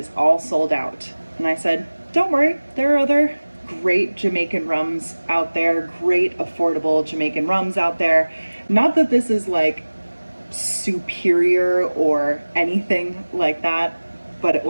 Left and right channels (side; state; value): both; inverted; correlation -1.00